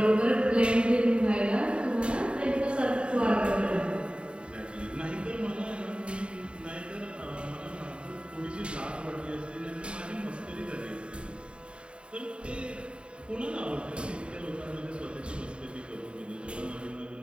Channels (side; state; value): left; late; 0.054 ms